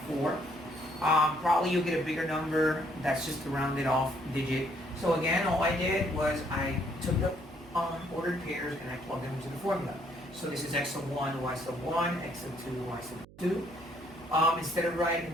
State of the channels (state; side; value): noise; right; hum, 22 dB below the sound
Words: Probably you'll get a bigger number. That's just a rounded off digit. So again, all I did was I took the ordered pairs and I plugged them into the formula. So this is x sub 1, y sub 1, x sub 2, y sub 2. Instead of